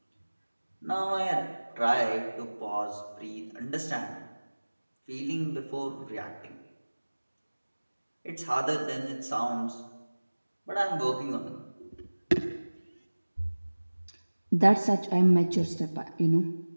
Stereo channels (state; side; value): inverted; both; correlation -1.00